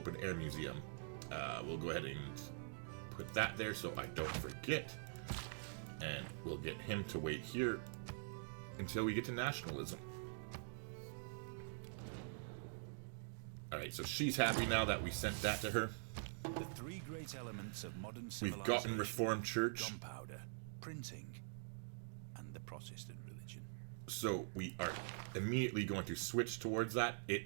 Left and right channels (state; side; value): silent; left; digital silence